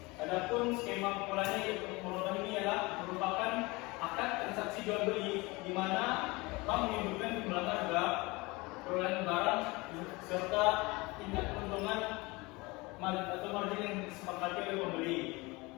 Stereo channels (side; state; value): right; quieter; 24.0 dB